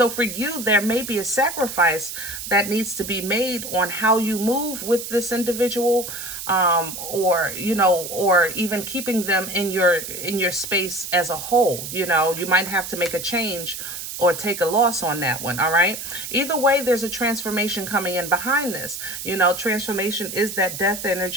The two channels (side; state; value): right; noise; hiss, 8 dB below the sound